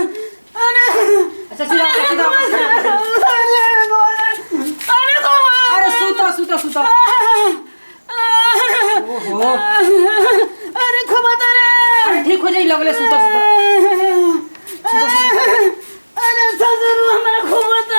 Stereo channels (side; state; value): both; inverted; correlation -1.00